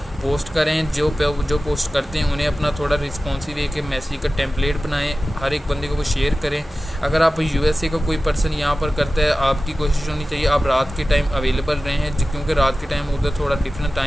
करें। जो पोस्ट करते हैं उन्हें अपना थोड़ा रिस्पॉन्सिव एक मैसेज का टेम्पलेट बनाएं, हर एक बंदे को वो शेयर करें। अगर आप USA का कोई पर्सन यहाँ पर करता है, आपकी कोशिश होनी चाहिए आप रात के टाइम अवेलेबल रहें हैं, क्योंकि रात के टाइम उधर थोड़ा डिफरेंट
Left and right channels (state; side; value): normal; both; correlation 0.95